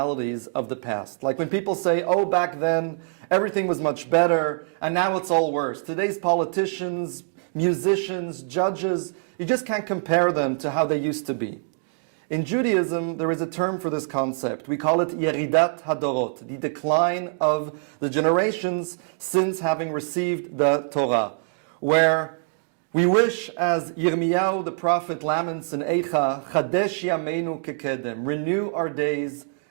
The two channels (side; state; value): left; silent; digital silence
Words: of the past. Like when people say, oh, back then everything was much better and now it's all worse. Today's politicians, musicians, judges, you just can't compare them to how they used to be. In Judaism, there is a term for this concept. We call it Yeridat Hadorot, the decline of the generations since having received the Torah, where we wish, as Yirmiyahu the prophet laments in Eicha, Chadesh Yameinu Kekedem, renew our days